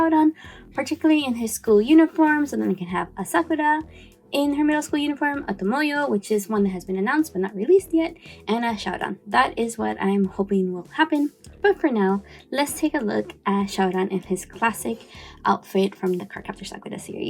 particularly in his school uniform, so then we can have a Sakura in her middle school uniform, a Tomoyo, which is one that has been announced but not released yet, and a Syaoran. That is what I'm hoping will happen. But for now, let's take a look at Syaoran in his classic outfit from the Cardcaptor Sakura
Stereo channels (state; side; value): identical; both; correlation 1.00